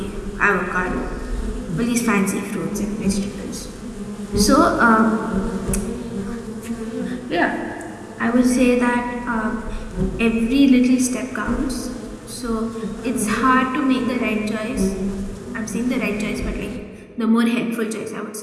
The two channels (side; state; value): both; identical; correlation 1.00